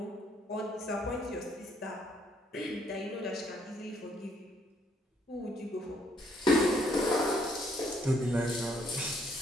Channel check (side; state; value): both; normal; correlation 0.68